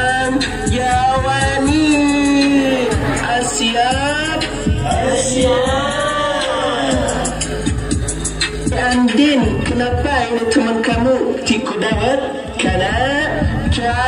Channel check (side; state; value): both; identical; correlation 1.00